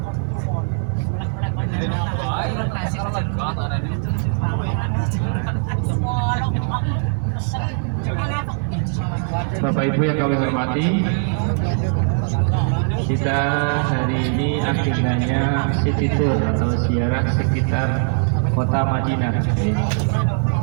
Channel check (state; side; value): silent; left; 61 dB below the other